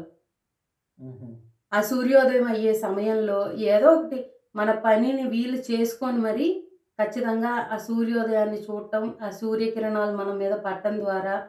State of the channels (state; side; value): identical; both; correlation 1.00